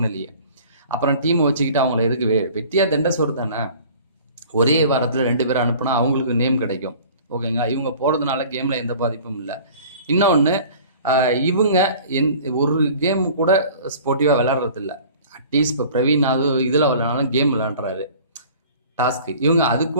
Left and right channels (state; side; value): inverted; both; correlation -0.46